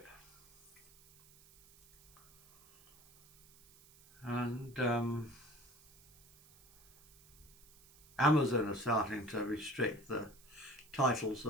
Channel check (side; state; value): right; noise; hiss, 25 dB below the sound